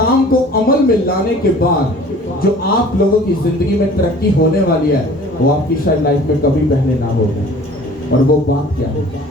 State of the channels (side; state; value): both; normal; correlation 0.48